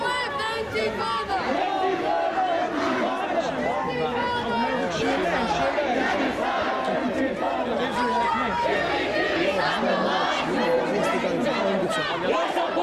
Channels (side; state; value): both; identical; correlation 1.00